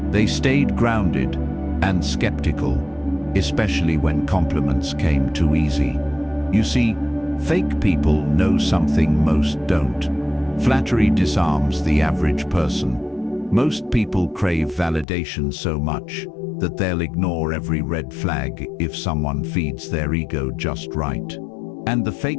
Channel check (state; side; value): drops out; right; at 15.1 s